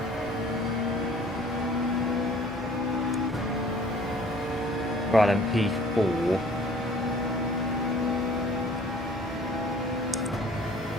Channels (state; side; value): normal; both; correlation 0.52